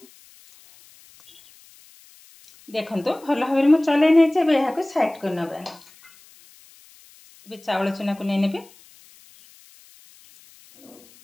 देखंतु भल भाबरे मु चले नै छै। एबे हाको साइड कर नबा। एबे चावल चुना को नै नेबी।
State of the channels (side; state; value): left; noise; hiss, 26 dB below the sound